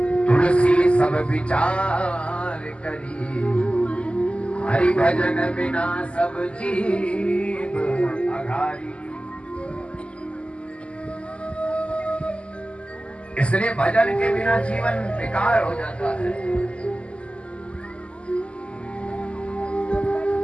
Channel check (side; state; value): right; late; 0.056 ms